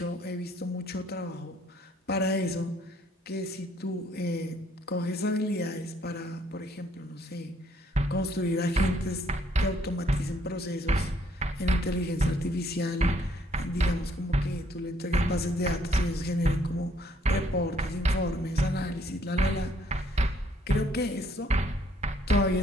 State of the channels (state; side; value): normal; both; correlation 0.66